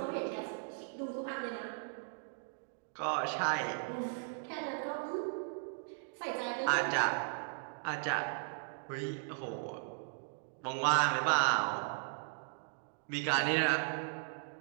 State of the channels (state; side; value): silent; left; digital silence